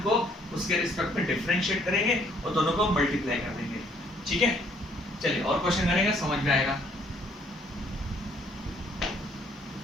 को उसके रिस्पेक्ट में डिफरेंशिएट करेंगे और दोनों को मल्टीप्लाई कर देंगे, ठीक है। चलिए और क्वेश्चन करेंगे, समझ में आएगा।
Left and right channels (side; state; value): both; normal; correlation 0.64